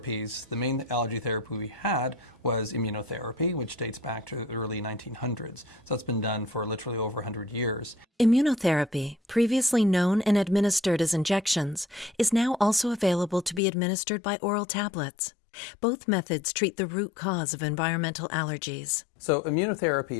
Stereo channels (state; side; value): drops out; right; at 13.6 s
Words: the main allergy therapy we had was immunotherapy, which dates back to the early 1900s. So that's been done for literally over 100 years. Immunotherapy, previously known and administered as injections, is now also available to be administered by oral tablets. Both methods treat the root cause of environmental allergies. So immunotherapy